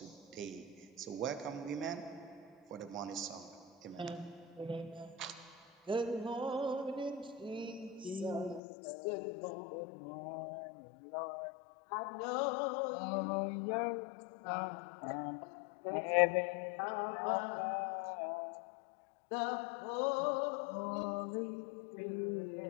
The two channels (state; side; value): drops out; right; at 8.6 s